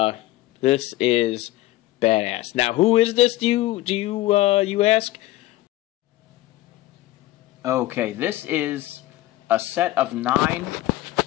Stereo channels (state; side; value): quieter; right; 16.8 dB